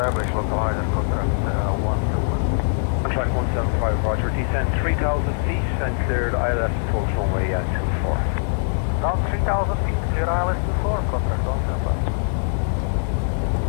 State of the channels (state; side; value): silent; right; digital silence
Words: localizer, contract 175. Contract 175, roger. Descend 3,000 feet and cleared ILS approach runway 24. Down 3,000 feet, clear ILS 24, contract 175.